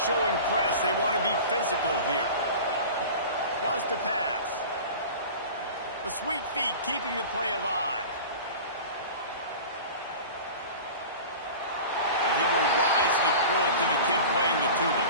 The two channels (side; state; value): both; inverted; correlation -0.36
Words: showing press. They want to be physical here. Wants to pass. The sweet feet keeping the play alive. And he will wisely throw it to the kid playing the tuba.